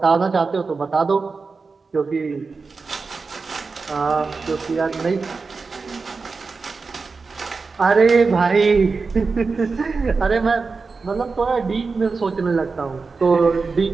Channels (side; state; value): left; quieter; 4.4 dB